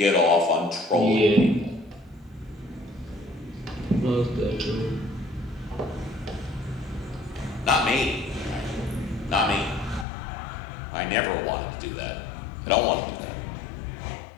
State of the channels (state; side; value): drops out; right; at 10.1 s